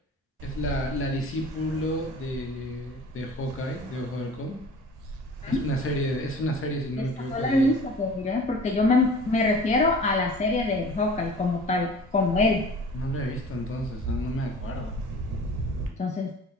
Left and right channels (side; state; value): both; normal; correlation 0.43